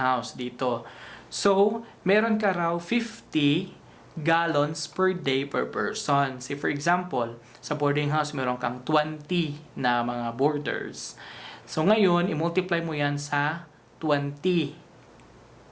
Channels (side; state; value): both; identical; correlation 1.00